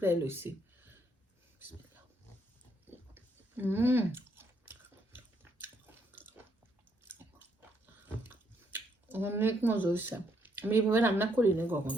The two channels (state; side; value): normal; both; correlation 0.73